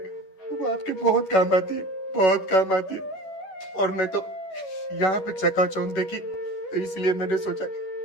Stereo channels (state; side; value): late; right; 11 ms